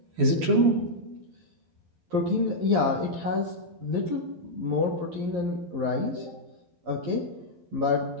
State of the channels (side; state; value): left; late; 12 ms